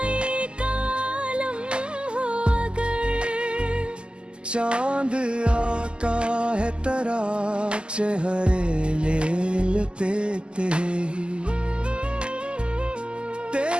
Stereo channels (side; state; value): left; late; 0.050 ms